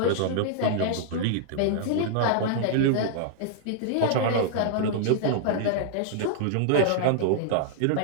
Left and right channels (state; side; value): different; both; correlation -0.01